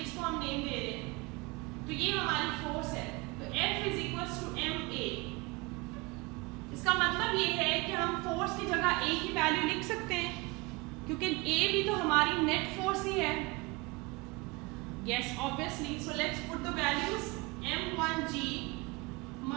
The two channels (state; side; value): quieter; left; 25.7 dB